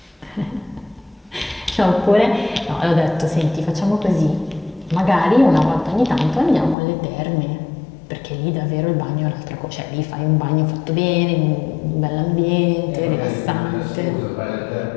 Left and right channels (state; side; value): drops out; right; at 6.8 s